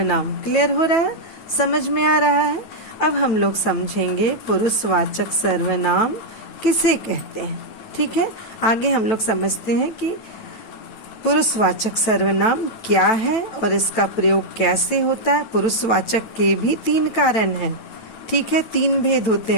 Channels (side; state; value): right; late; 9.0 ms